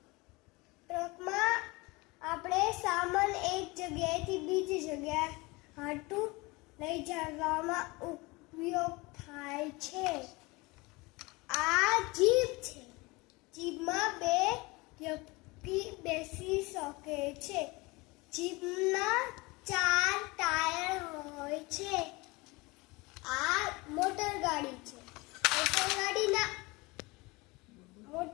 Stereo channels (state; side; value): quieter; right; 24.2 dB